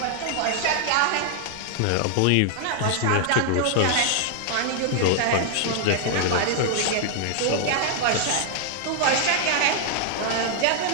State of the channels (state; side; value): different; both; correlation 0.00